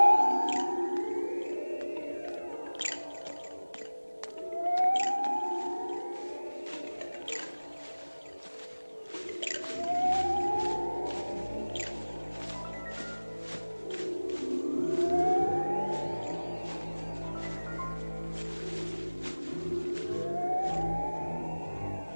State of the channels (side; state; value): both; inverted; correlation -1.00